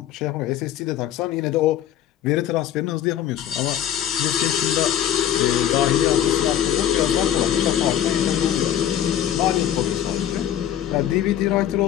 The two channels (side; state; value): right; quieter; 10.8 dB